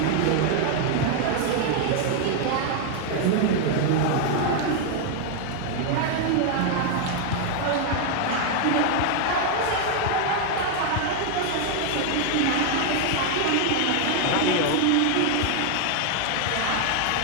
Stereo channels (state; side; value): different; both; correlation 0.00